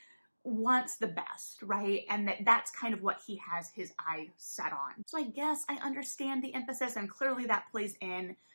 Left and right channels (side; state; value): both; inverted; correlation -1.00